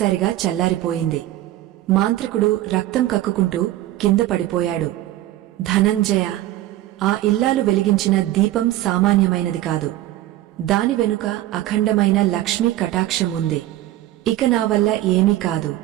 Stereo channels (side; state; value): left; quieter; 14.7 dB